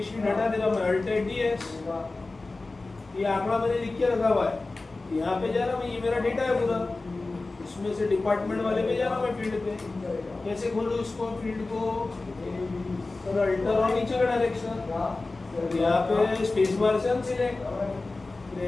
शीट हटा दे रहा मैं, अल्ट डीएस, ये आंकड़ा मैंने लिख के रखा हुआ है। यहाँ पे जा रहा मैं, ये मेरा डेटा है पूरा, इसमें से डिपार्टमेंट वाले पे जा रहा मैं फील्ड पे। कैसे खोलूँ इसको फील्ड को, और अल्टर और नीचे का डायरेक्शन, यहाँ पे स्पेस बार से अनसिलेक्ट,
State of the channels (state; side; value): quieter; right; 3.4 dB